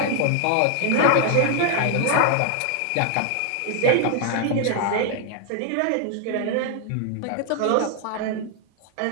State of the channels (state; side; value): different; both; correlation 0.00